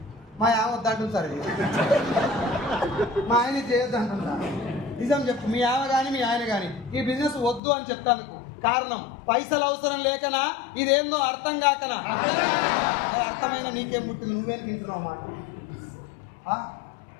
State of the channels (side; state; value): right; drops out; at 7.6 s